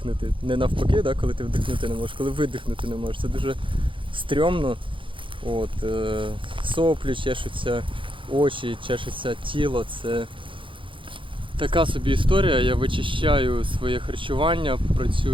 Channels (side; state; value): left; late; 0.25 ms